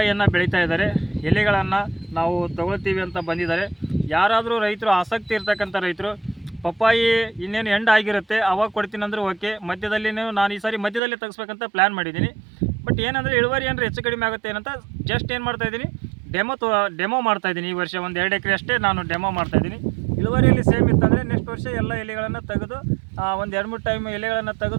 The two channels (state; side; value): drops out; left; at 11.0 s